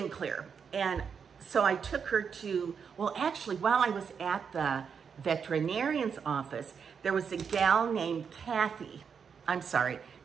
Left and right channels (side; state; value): left; quieter; 6.6 dB